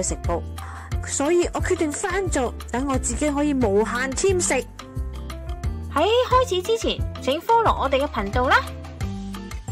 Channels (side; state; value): both; identical; correlation 1.00